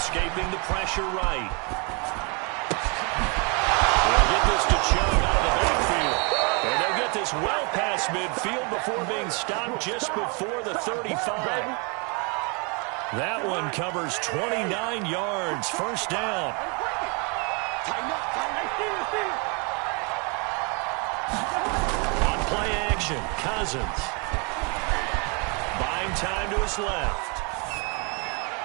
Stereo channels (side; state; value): left; quieter; 33.2 dB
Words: the pressure right. Get this to Chubb out of the backfield. And they'll get this well past midfield before being stopped just before the 35. That one covers 29 yards. First down. On play action, Cousins. Buying time to his left.